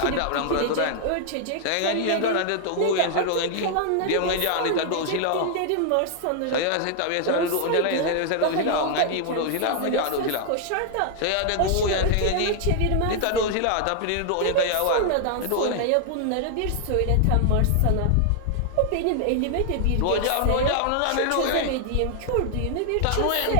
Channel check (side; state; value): both; different; correlation 0.00